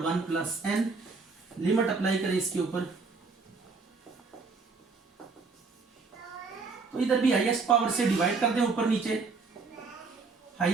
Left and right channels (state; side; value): quieter; left; 4.4 dB